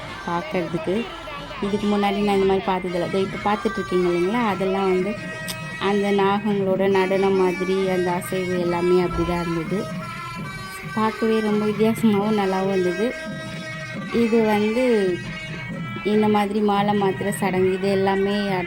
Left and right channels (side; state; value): both; identical; correlation 1.00